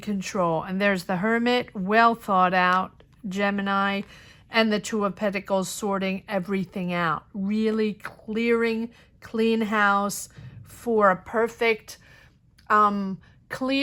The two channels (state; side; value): identical; both; correlation 1.00